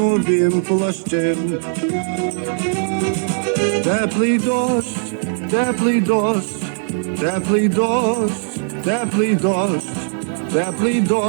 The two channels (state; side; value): silent; left; digital silence